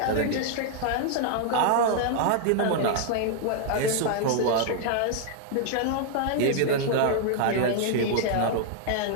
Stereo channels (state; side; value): different; both; correlation 0.00